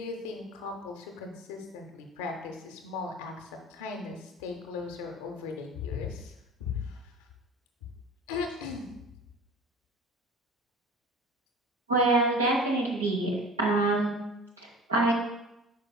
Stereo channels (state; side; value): normal; both; correlation 0.39